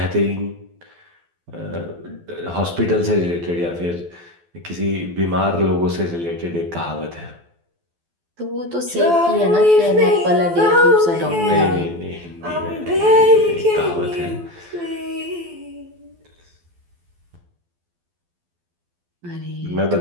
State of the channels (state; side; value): late; left; 12 ms